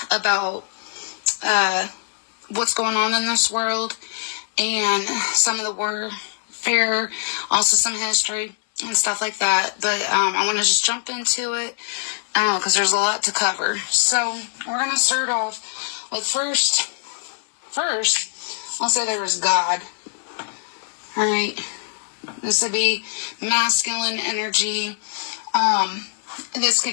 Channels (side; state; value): right; silent; 64 dB below the other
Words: about what's going on in this world, and some of the warfare, also some history and stuff like that. But I want to just jump into it because there's a lot to cover. So we're going to start off with first, I'll say there was God. Alright, this would be masculine energy. This